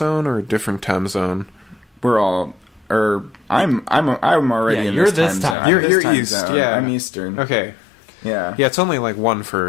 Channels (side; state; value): right; drops out; at 5.6 s